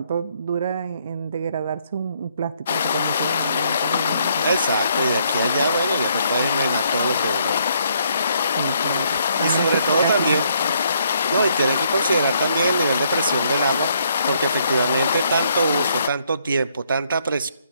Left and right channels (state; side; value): inverted; both; correlation -0.70